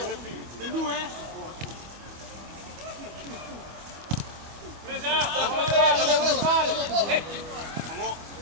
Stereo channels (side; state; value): left; late; 25 ms